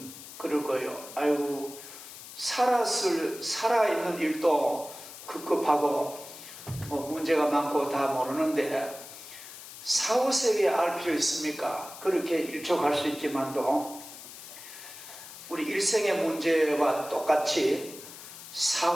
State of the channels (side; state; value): left; noise; hiss, 14 dB below the sound